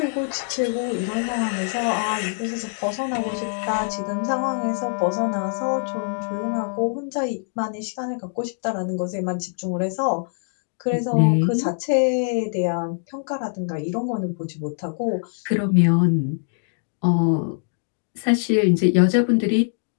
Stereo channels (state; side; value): silent; right; digital silence